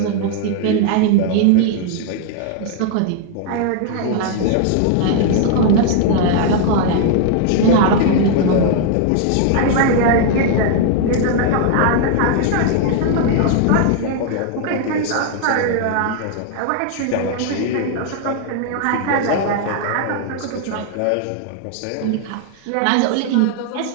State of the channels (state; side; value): different; both; correlation 0.00